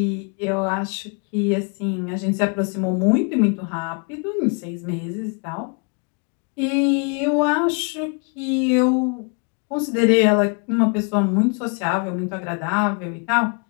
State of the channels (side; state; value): right; quieter; 36.9 dB